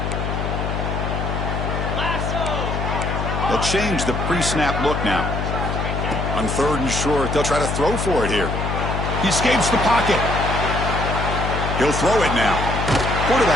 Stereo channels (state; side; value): noise; left; hum, 2 dB below the sound